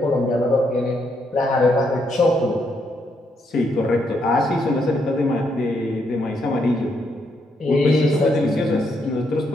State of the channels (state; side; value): normal; both; correlation 0.76